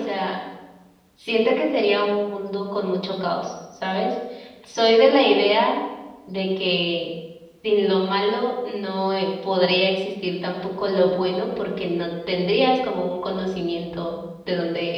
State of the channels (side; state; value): both; identical; correlation 1.00